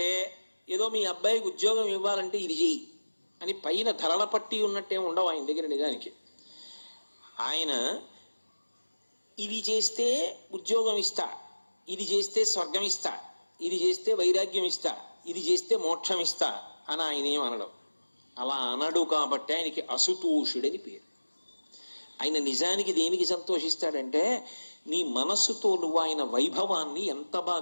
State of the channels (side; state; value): both; inverted; correlation -1.00